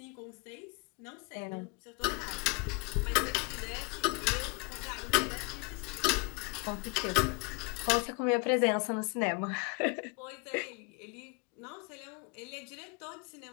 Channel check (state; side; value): quieter; right; 30.5 dB